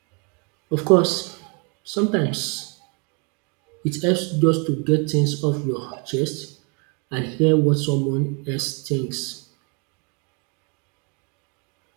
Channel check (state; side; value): quieter; left; 34.1 dB